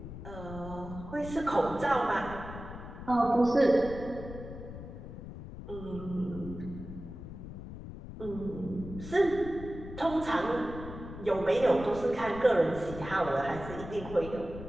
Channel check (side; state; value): left; noise; rumble, 11 dB below the sound